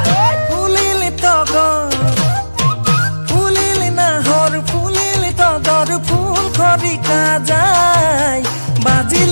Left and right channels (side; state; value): both; inverted; correlation -1.00